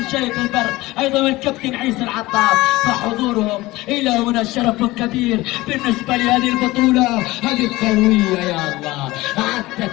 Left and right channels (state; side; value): quieter; right; 19.5 dB